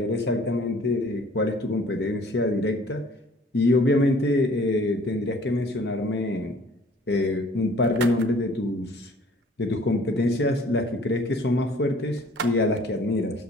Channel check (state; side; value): normal; both; correlation 0.54